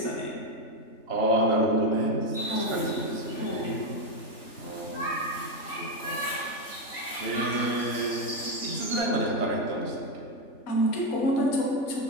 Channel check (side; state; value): right; late; 3.4 ms